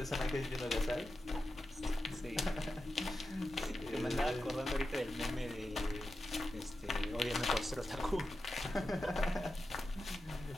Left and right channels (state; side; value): normal; both; correlation 0.90